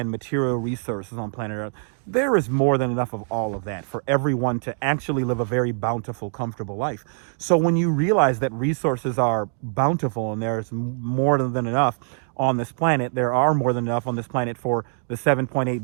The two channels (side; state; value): left; silent; digital silence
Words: material resources on planet Earth, there is more than enough of all of that for everyone to actually live a very bountiful, comfortable life. So when you realize that resources are bountiful and there's more than enough on this planet, there are more than enough on this planet for the